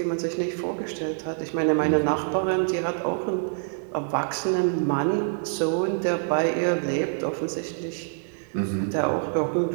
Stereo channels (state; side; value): silent; left; digital silence